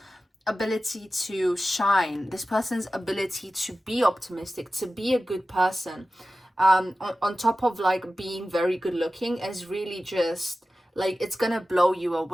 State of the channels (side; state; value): both; normal; correlation 0.95